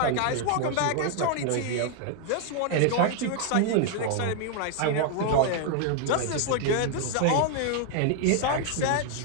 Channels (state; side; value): different; both; correlation 0.00